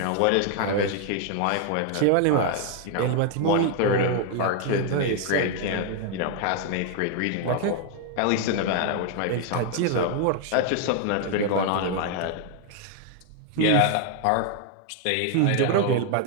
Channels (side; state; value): both; different; correlation 0.00